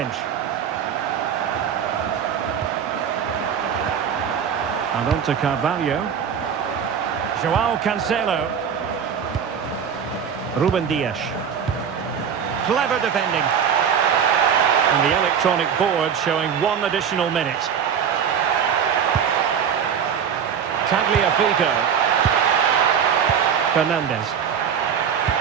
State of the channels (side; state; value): left; quieter; 7.7 dB